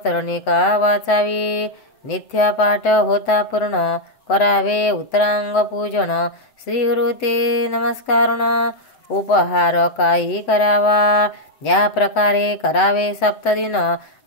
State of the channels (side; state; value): right; late; 7.9 ms